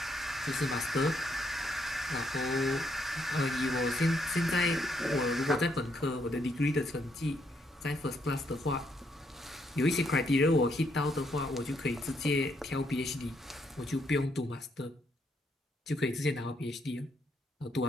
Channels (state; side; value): normal; both; correlation 0.74